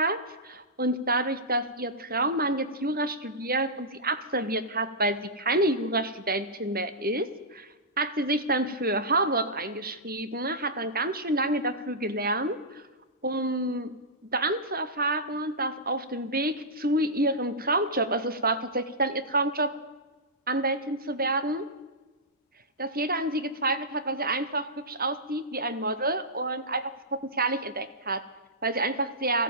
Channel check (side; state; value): both; normal; correlation -0.14